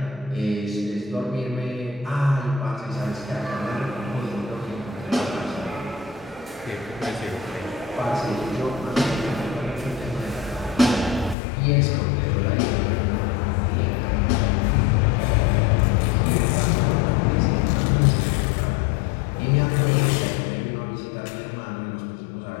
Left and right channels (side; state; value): right; drops out; at 11.4 s